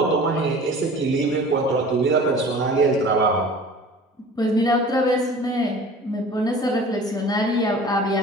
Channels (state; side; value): normal; both; correlation 0.43